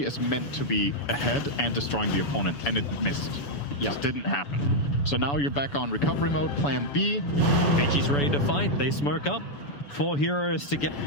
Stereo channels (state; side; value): late; right; 7.0 ms